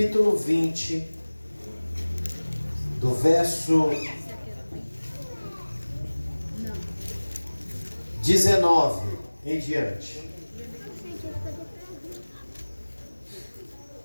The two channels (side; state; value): both; inverted; correlation -1.00